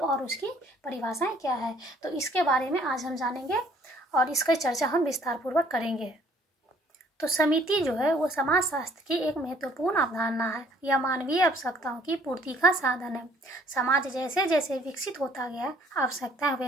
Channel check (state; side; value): normal; both; correlation 0.60